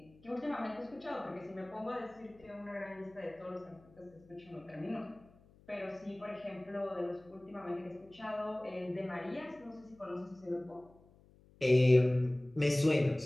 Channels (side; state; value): left; noise; hum, 27 dB below the sound